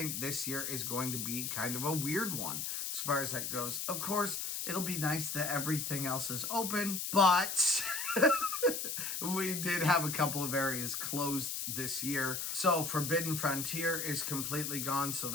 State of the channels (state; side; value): noise; left; hiss, 3 dB below the sound